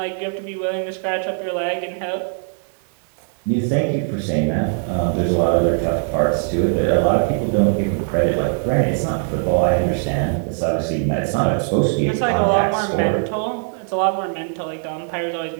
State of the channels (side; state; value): left; silent; 57 dB below the other